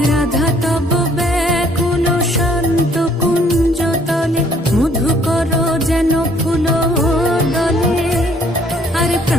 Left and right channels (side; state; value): both; normal; correlation 0.62